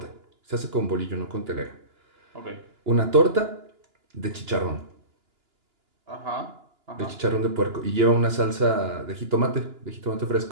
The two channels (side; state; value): left; late; 2.9 ms